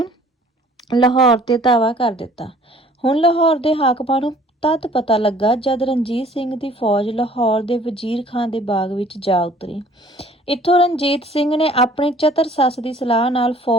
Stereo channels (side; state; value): both; normal; correlation 0.54